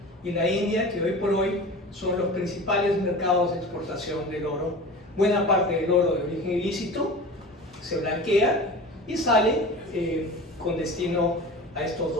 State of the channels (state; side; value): normal; both; correlation 0.35